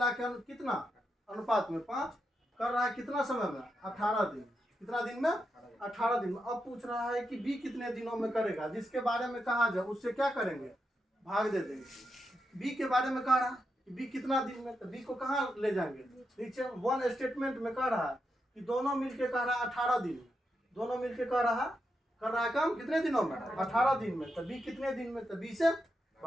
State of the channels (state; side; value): normal; both; correlation 0.85